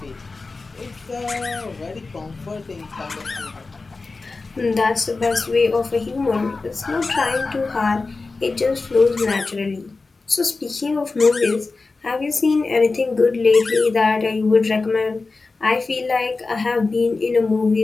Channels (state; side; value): quieter; right; 3.8 dB